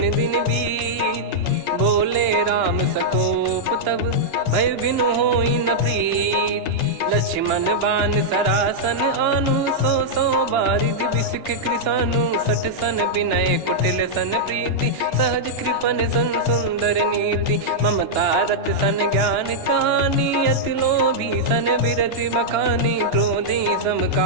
दिन बीत। बोले राम सकोप तब, भय बिनु होई न प्रीत। लक्ष्मण बान सरासन आनु, 100 बारिधि बिसक कृसानु। 60 सन विनय कुटिल सन प्रीति, सहज कृपन सन सुंदर नीति। ममता रत सन ज्ञान कहानी, अति लोभी सन बिरति बखानी। क्रोधी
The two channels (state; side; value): late; left; 2.9 ms